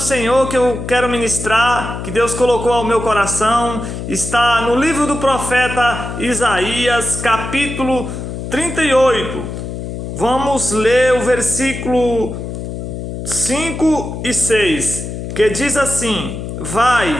Senhor que eu quero ministrar, que Deus colocou ao meu coração, está no livro do profeta Isaías, capítulo 38. Vamos ler o versículo 5 e 6, que diz assim:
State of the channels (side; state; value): left; noise; hum, 7 dB below the sound